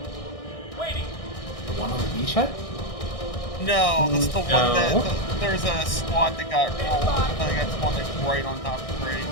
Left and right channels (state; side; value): late; right; 1.6 ms